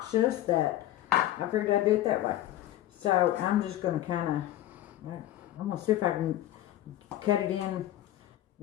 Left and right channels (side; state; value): right; quieter; 13.7 dB